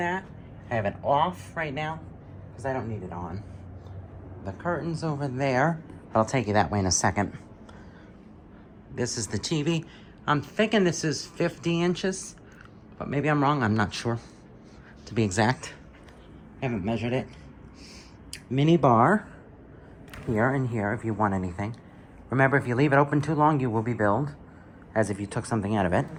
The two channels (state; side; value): identical; both; correlation 1.00